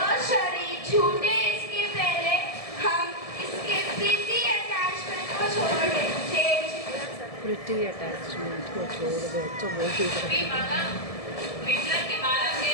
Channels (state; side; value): late; right; 1.7 ms